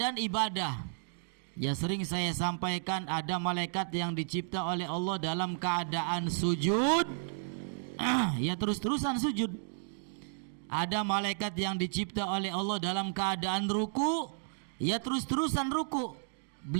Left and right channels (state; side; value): silent; left; digital silence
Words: ibadah. Ya, sering saya sampaikan, ada malaikat yang dicipta oleh Allah dalam keadaan sujud, ya terus-terusan sujud. Ada malaikat yang dicipta oleh Allah dalam keadaan ruku, ya terus-terusan ruku.